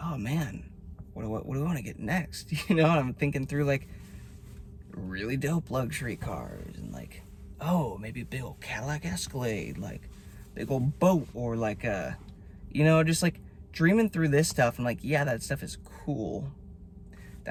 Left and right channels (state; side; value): identical; both; correlation 1.00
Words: oh man, what do I want to get next? You know, I'm thinking through like really dope luxury cars and like, oh, maybe a big old Cadillac Escalade, like big old boat, or like you know, just like dreaming through this stuff. And like, yeah, that stuff is cool.